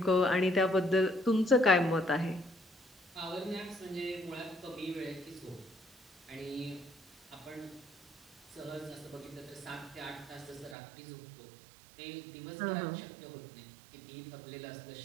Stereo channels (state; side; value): drops out; left; at 10.8 s